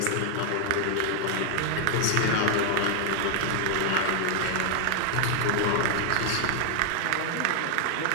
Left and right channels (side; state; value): both; different; correlation 0.00